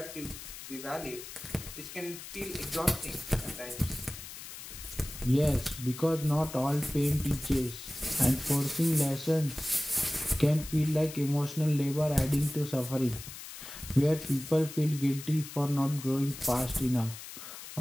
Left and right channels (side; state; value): left; noise; hiss, 12 dB below the sound